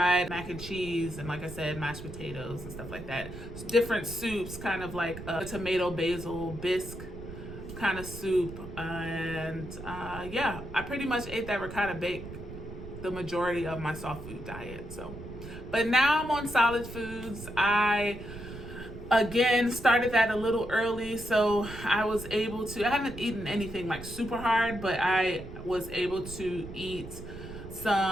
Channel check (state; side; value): noise; right; rumble, 12 dB below the sound